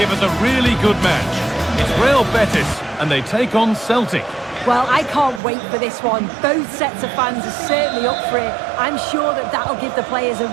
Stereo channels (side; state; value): left; drops out; at 5.4 s